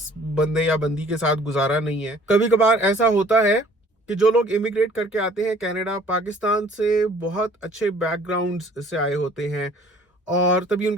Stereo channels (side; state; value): both; normal; correlation 0.54